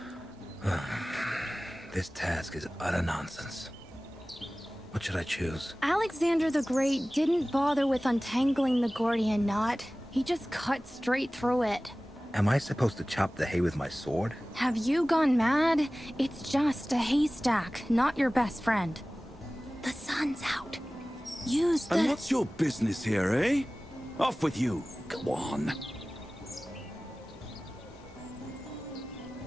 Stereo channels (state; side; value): normal; both; correlation 0.97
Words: This task is utter nonsense. What should I choose? Alexander the Great didn't bother with untangling the Gordian knot. He just cut straight through it. Am I supposed to chop the hay with my sword? Have you gone mad? It's just a haystack, not your best friend. The sun's out. Use the... And what's your business here, eh? Off with you. Go on.